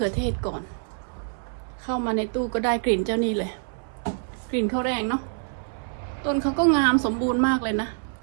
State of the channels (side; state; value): left; silent; 61 dB below the other